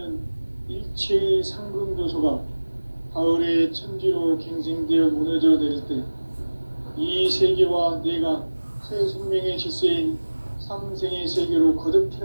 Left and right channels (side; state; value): both; inverted; correlation -1.00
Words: 일체의 상금 요소가 가을의 천지로 갱생되어 무너져 내릴 때 이 세계와 내가 새 생명의 질서인 상생의 세계로 거듭